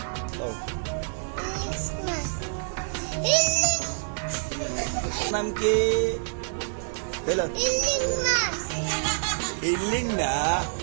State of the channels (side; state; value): left; silent; digital silence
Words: নাম কি? ইলিং না,